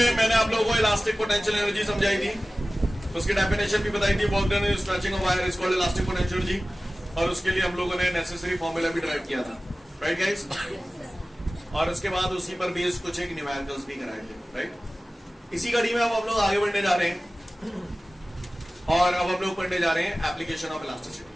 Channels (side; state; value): both; normal; correlation 0.96